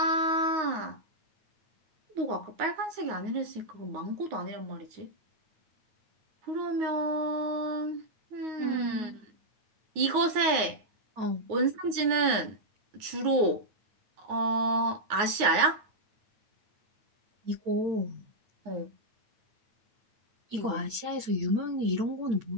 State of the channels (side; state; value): left; late; 9.5 ms